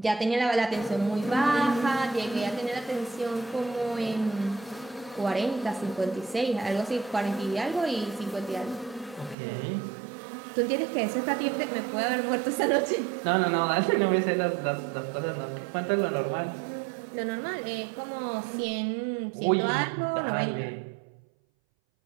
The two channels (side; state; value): left; drops out; at 9.3 s